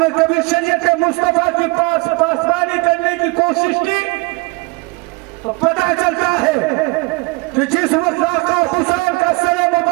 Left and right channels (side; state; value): left; quieter; 26.9 dB